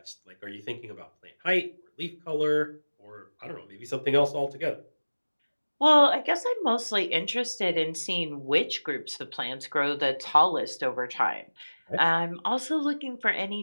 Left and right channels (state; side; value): inverted; both; correlation -1.00